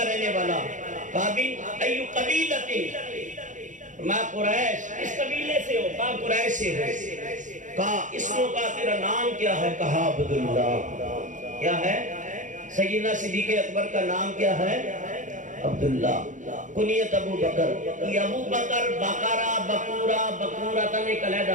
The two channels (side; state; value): left; late; 0.36 ms